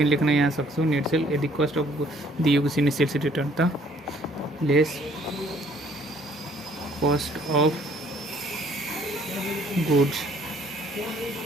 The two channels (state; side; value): normal; both; correlation 0.61